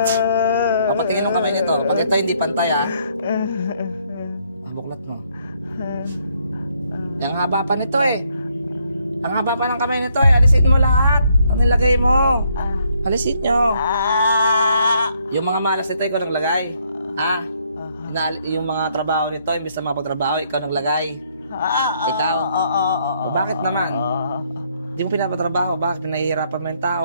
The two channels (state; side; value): inverted; both; correlation -0.71